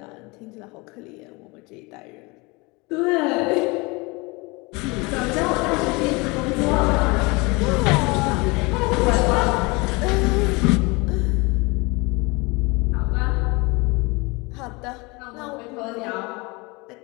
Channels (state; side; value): quieter; right; 26.2 dB